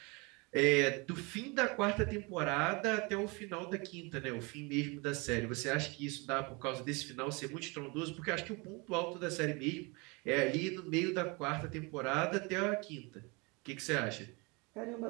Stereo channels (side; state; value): left; quieter; 28.4 dB